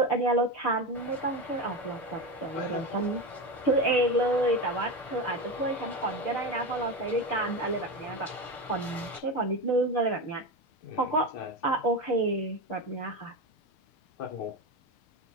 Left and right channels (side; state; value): right; late; 6.7 ms